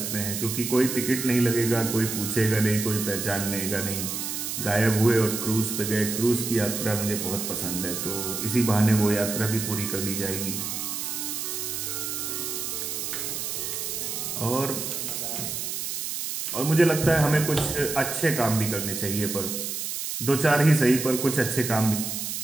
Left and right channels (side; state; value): right; noise; hiss, 4 dB below the sound